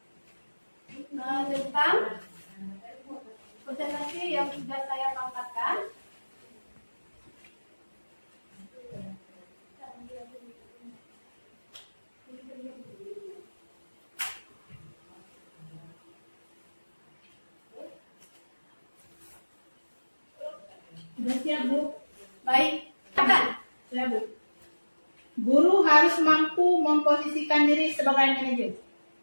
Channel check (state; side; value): inverted; both; correlation -1.00